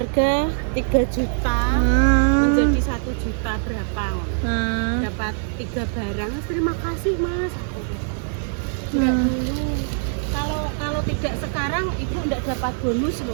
3 juta menjadi 1 juta berapa? Dapat 3 barang. Terima kasih Mas. Enggak dulu. Kalau tidak sekarang ibu enggak dapat bonus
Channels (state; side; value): silent; left; digital silence